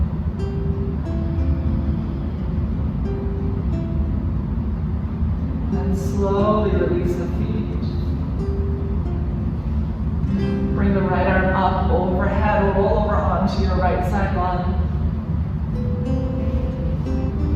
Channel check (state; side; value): identical; both; correlation 1.00